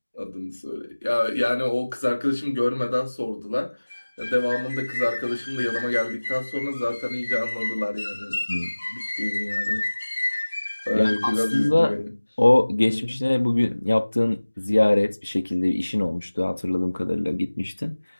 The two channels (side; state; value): both; inverted; correlation -1.00